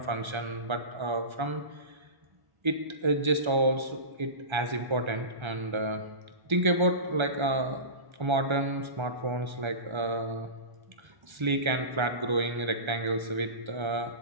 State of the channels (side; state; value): left; late; 1.3 ms